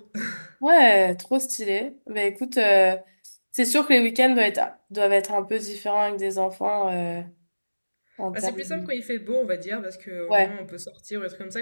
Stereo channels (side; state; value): both; inverted; correlation -1.00